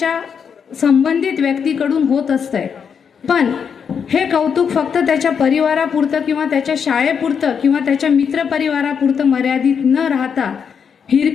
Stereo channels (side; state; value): right; quieter; 6.9 dB